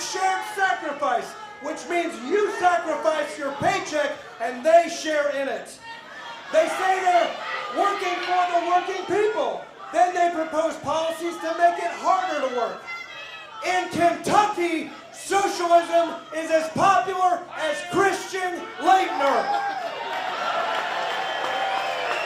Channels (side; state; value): both; identical; correlation 1.00